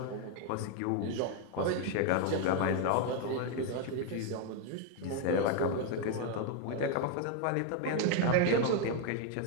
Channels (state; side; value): different; both; correlation 0.01